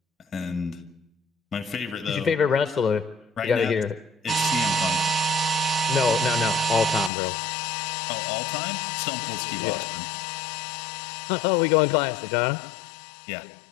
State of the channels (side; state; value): right; drops out; at 7.1 s